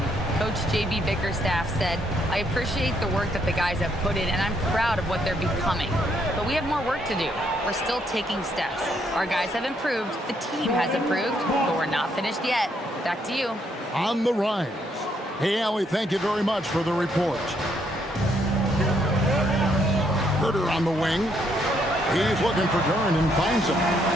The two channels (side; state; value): both; normal; correlation 0.72